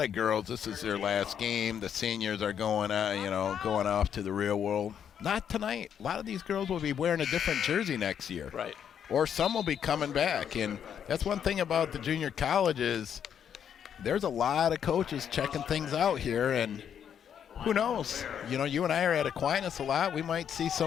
of girls, this is their last game. The seniors are going off to the real world. Not tonight. A lot of these girls will be wearing a different jersey next year. Right. Or some will be coming back. And that's one thing about the junior colleges. There's a lot of coaches checking things out here, and who knows? You and I are at Aquinas a lot. We might see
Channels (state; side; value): quieter; right; 8.5 dB